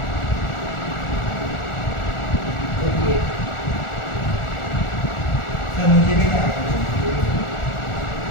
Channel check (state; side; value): late; right; 1.4 ms